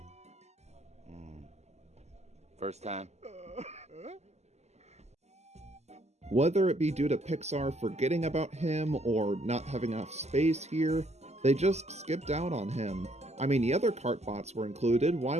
First time? Whether it be due to Pixar forgetting about him or not having enough space here, they just skipped out on him. I mean, the other Cartbots were included, why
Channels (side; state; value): left; late; 0.32 ms